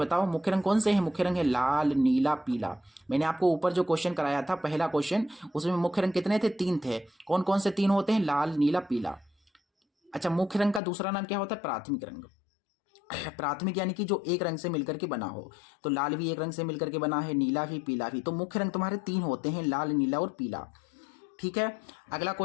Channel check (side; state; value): right; drops out; at 10.8 s